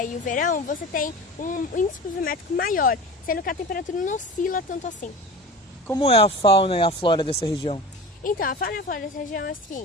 verão, você tem um índice pluviométrico maior, sendo que a temperatura não oscila tanto assim. Como é a fauna e a flora dessa região? Então, a fauna e a flora dessa região é o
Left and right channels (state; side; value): normal; both; correlation 0.33